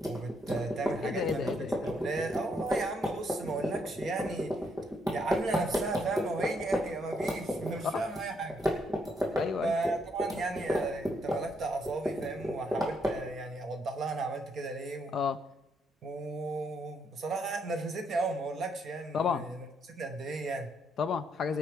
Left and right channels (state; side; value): normal; both; correlation 0.74